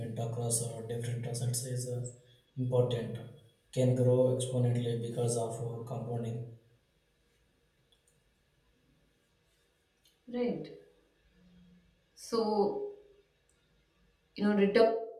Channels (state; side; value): identical; both; correlation 1.00